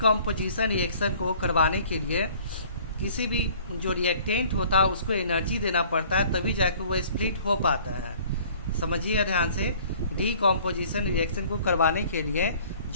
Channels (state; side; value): inverted; both; correlation -0.53